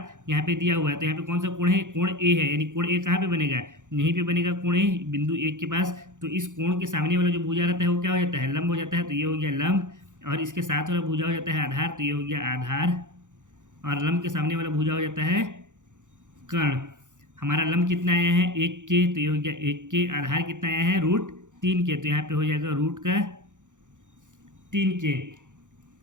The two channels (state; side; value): late; left; 0.86 ms